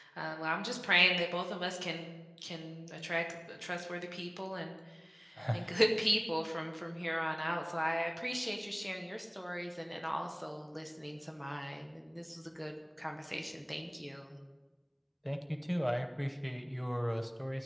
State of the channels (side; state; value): both; identical; correlation 1.00